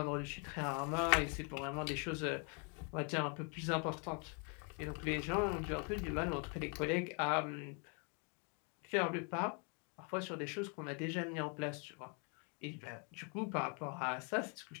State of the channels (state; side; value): quieter; right; 37.1 dB